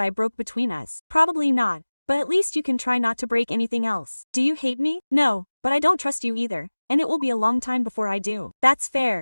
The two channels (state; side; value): inverted; both; correlation -1.00